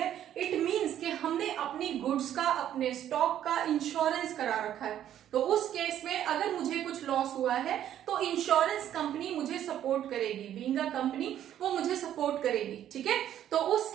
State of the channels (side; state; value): left; quieter; 11.0 dB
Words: इट मींस कि हमने अपनी गुड्स का, अपने स्टॉक का इंश्योरेंस करा रखा है. तो उस केस में अगर मुझे कुछ लॉस हुआ है तो इंश्योरेंस कंपनी मुझे सपोर्ट करेगी. बीइंग अ कंपनी वो मुझे सपोर्ट करेगी, ठीक है. तो उस